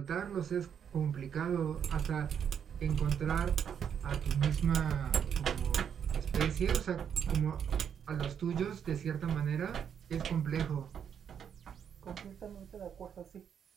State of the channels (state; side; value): quieter; left; 8.0 dB